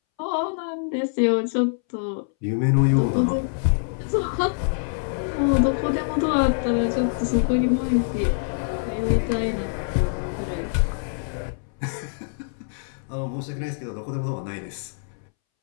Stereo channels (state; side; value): silent; right; 62 dB below the other